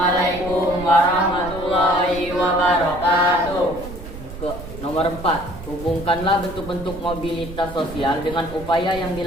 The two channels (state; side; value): noise; right; rumble, 13 dB below the sound